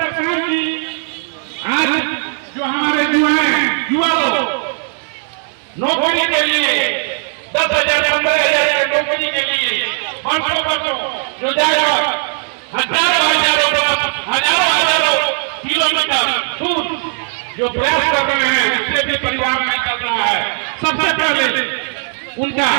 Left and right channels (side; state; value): left; silent; 58 dB below the other